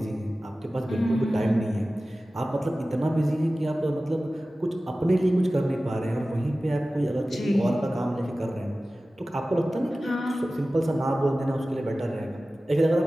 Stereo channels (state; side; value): normal; both; correlation 0.96